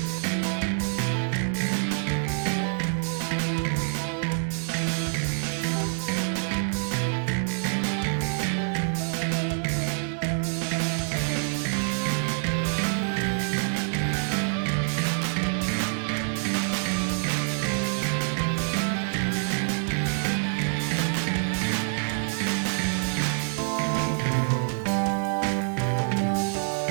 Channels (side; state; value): left; silent; digital silence